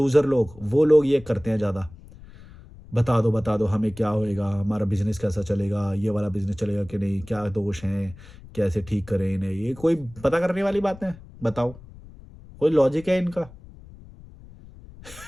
लोग, वो लोग ये करते हैं ज़्यादा, बता दो हमें क्या होएगा, हमारा बिजनेस कैसा चलेगा, ये वाला बिजनेस चलेगा कि नहीं, क्या दोष हैं, कैसे ठीक करें इन्हें, ये कोई पता करने वाली बात है? बताओ, कोई लॉजिक है इनका?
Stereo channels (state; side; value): noise; left; rumble, 19 dB below the sound